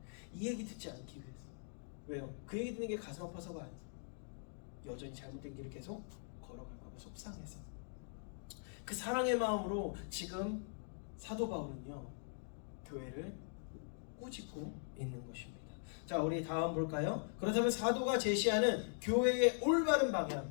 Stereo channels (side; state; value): right; silent; digital silence